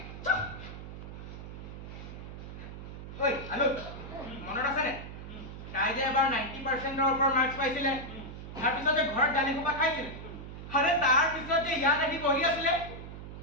ঐ আলু মনত আছেনে তাই যে এবাৰ 90%ৰ ওপৰত মাৰ্কছ পাইছিলে তাৰপিছত যে ঘৰত গালি সোপা খাইছিলে আৰে তাৰপিছত যে ইয়াত আহি বহি আছিলে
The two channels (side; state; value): right; noise; hum, 11 dB below the sound